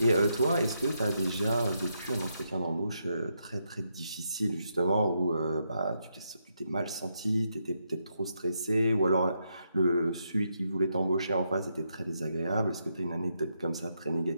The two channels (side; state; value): both; inverted; correlation -0.81